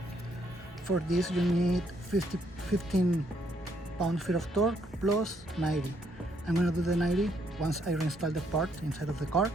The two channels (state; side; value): normal; both; correlation 0.71